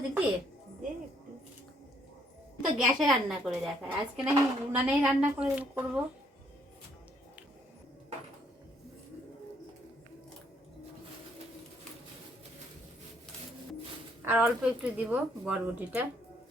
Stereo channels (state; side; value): normal; both; correlation 0.68